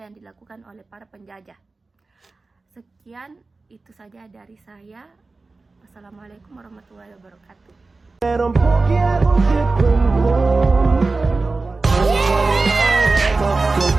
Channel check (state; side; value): quieter; left; 3.6 dB